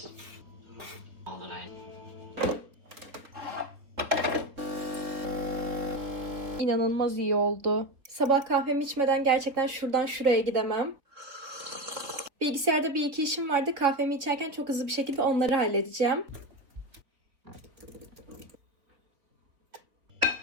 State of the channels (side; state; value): left; late; 3.6 ms